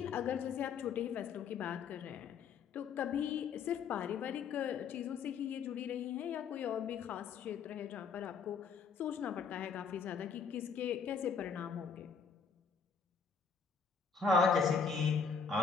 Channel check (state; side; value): quieter; right; 5.9 dB